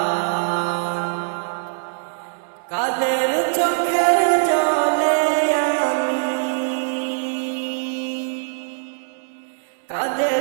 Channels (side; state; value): left; silent; 64 dB below the other